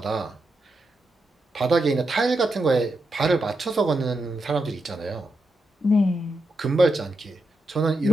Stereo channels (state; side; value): normal; both; correlation 0.85